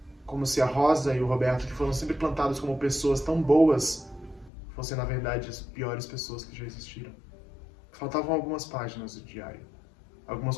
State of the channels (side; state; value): right; drops out; at 4.5 s